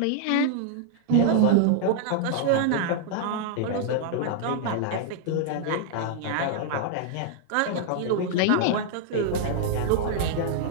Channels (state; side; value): different; both; correlation -0.01